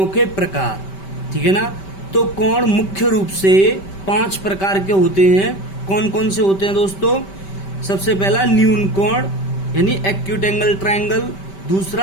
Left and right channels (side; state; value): right; late; 5.2 ms